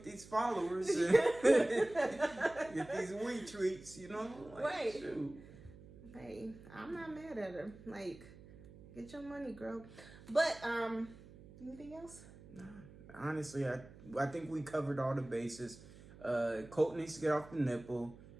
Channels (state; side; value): noise; right; hum, 19 dB below the sound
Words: these followers and get these wee treats, Like, Right. shoot. Hey, I'm not mad at her. Like, get your money, girl. But anything else? Nah. Honestly, I think we covered all the bases. Colt needs to get off the nipple.